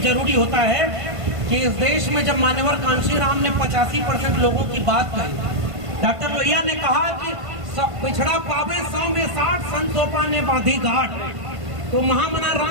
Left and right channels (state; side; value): late; left; 1.5 ms